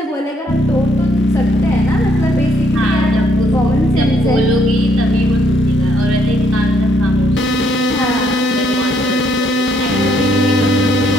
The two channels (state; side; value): normal; both; correlation 0.70